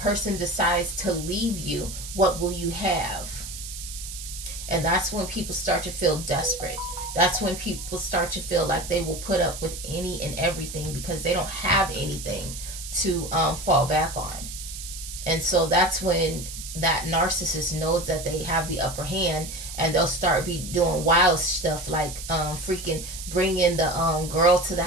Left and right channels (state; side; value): noise; right; hiss, 10 dB below the sound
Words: decides to leave you, what will you have? And that's when people start to feel desperate. That's when people start to feel like they will put up with any and everything because they don't have anything to fall back on. And so that's when that narcissist knows that they have the upper hand, and they'll start be doing wild stuff like freaking bringing the girl to the